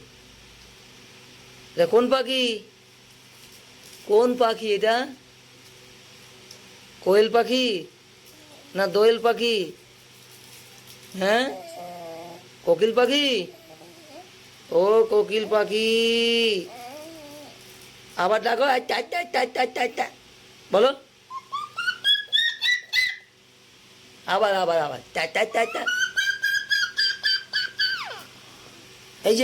এটা কোন পাখি? কোন পাখি এটা? কোয়েল পাখি না দোয়েল পাখি? হ্যাঁ, কোকিল পাখি। ও কোকিল পাখি, আবার ডাকো। আচ্ছা আচ্ছা আচ্ছা আচ্ছা আচ্ছা আচ্ছা, বলো। আবার আবার আবার চা চা চা চা। এই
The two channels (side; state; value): both; identical; correlation 1.00